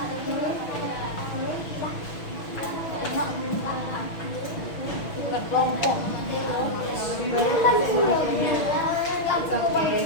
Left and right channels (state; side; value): late; right; 5.9 ms